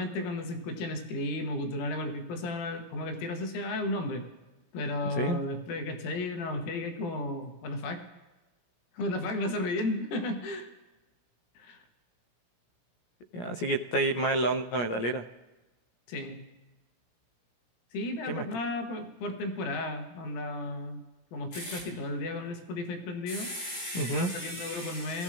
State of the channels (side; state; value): right; late; 17 ms